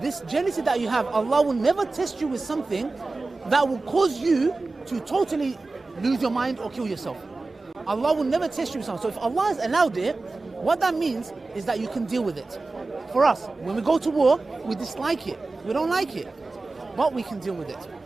jealousy that you have, Allah will never test you with something that will cause you to totally lose your mind or kill yourself. Allah will never test you with something. So if Allah has allowed it, what that means is that you can deal with it. For us, when we go to war, we dislike it. We don't like it. But we can deal with it.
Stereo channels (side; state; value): left; quieter; 3.5 dB